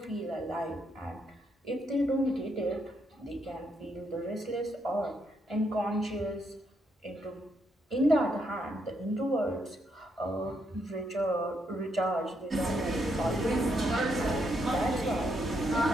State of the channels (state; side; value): normal; both; correlation 0.77